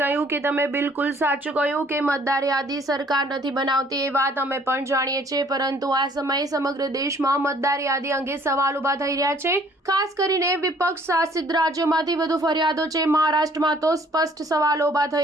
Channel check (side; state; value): both; normal; correlation 0.59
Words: કે તમે બિલકુલ સાચું કહ્યું કે મતદાર યાદી સરકાર નથી બનાવતી, એ વાત અમે પણ જાણીએ છીએ, પરંતુ આ સમયે સમગ્ર દેશમાં મતદાર યાદી અંગે સવાલ ઊભા થઈ રહ્યા છે. ખાસ કરીને વિપક્ષ શાસિત રાજ્યોમાંથી વધુ ફરિયાદો છે. મહારાષ્ટ્રમાં તો સ્પષ્ટ સવાલો ઊભા